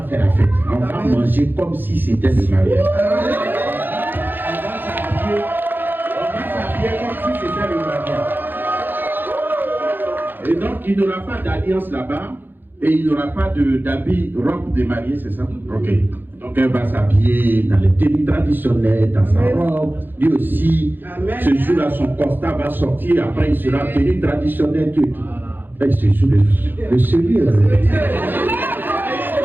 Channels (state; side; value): late; left; 0.092 ms